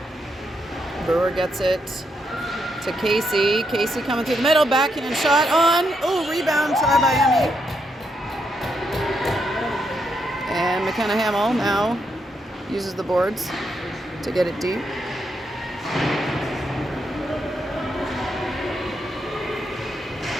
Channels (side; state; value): both; normal; correlation 0.79